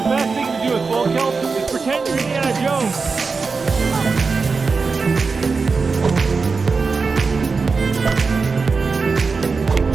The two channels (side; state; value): left; quieter; 4.6 dB